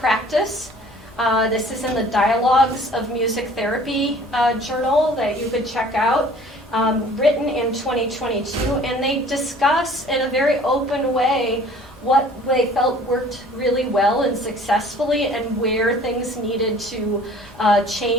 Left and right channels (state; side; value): normal; both; correlation 0.51